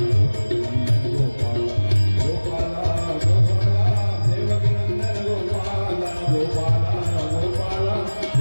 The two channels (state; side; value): inverted; both; correlation -1.00